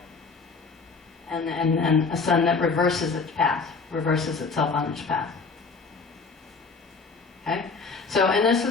and a sun that reverses its path, reverses itself on its path. Okay? So, and this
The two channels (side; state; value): right; quieter; 4.5 dB